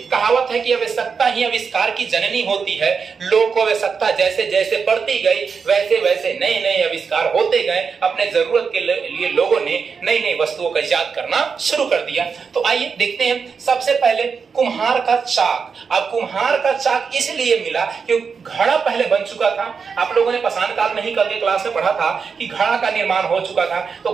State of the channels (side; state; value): left; quieter; 5.7 dB